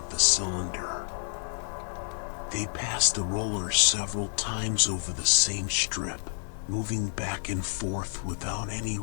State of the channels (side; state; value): right; silent; digital silence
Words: the cylinder. They pass the roller several times over the same strip, moving back and forth without any